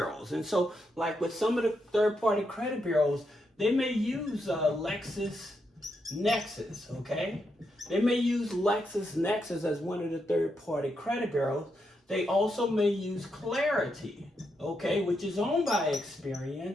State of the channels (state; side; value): normal; both; correlation 0.82